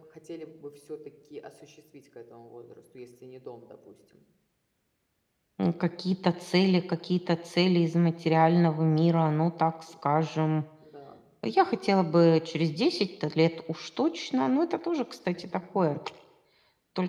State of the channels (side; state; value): both; identical; correlation 1.00